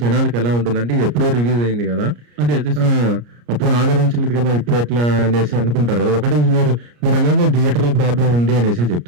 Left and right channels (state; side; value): late; left; 34 ms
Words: జనాలకి ఎలా ఉంటుందంటే ఎప్పుడో రిలీజ్ అయింది కదా, అదే అప్పుడు ఆదరించలేదు కదా, ఇప్పుడు ఎట్లా అనేసి అనుకుంటారు కదా. ఒకటి మీరు అనేది థియేటర్ ప్రాబ్లం ఉంది అనేసి